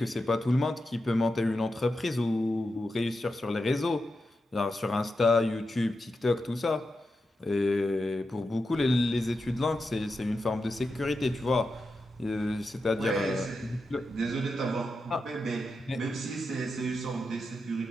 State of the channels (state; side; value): normal; both; correlation 0.88